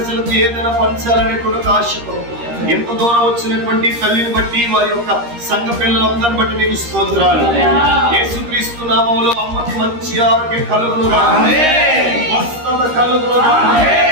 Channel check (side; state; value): left; late; 13 ms